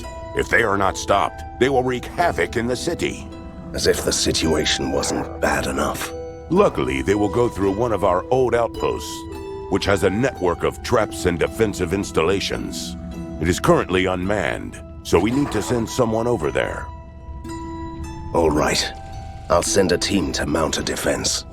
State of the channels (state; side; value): identical; both; correlation 1.00